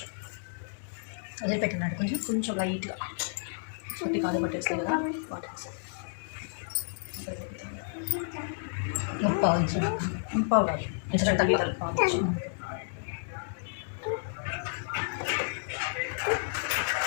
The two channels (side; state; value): right; silent; digital silence